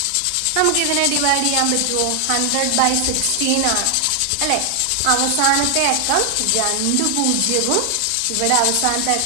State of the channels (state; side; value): different; both; correlation 0.00